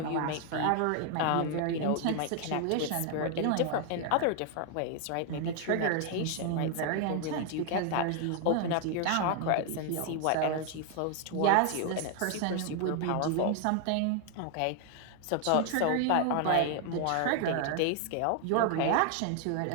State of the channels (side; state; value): both; different; correlation 0.00